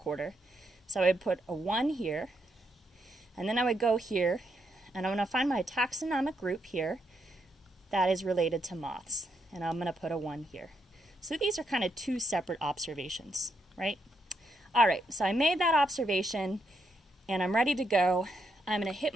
So I would put a 1 here, and then I would go here, and I'm going to find my taxonomic group here that is related to moths, and I'm going to put a 1 here. So these are kind of 2 separate observations, right? All right, so I made that observation, and I'm ready to go. I'm going to hit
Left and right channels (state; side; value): normal; both; correlation 0.79